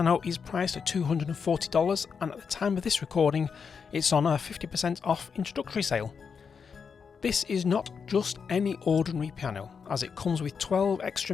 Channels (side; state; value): right; quieter; 6.1 dB